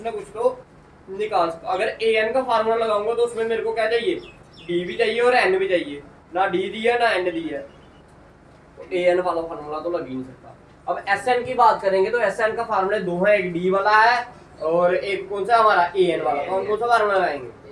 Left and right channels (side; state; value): both; identical; correlation 1.00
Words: ना कुछ तो निकाल सकता। अगर an का फार्मूला लगाऊंगा तो उसमें मेरे को क्या चाहिए? d भी चाहिए और n भी चाहिए। ना d दी है ना n दी है, तो an वाला फार्मूला तो लग ही नहीं सकता। अब sn की बात करेंगे तो sn का फार्मूला दो है, एक d वाला है और एक कौन सा हमारा an वाला। तो हम कौन सा फार्मूला लगाएंगे?